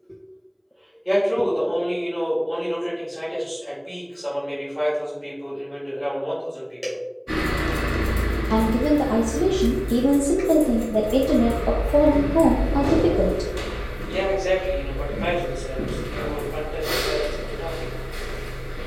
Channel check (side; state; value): both; identical; correlation 1.00